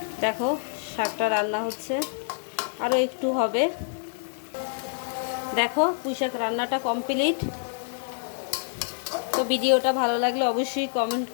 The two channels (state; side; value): silent; right; digital silence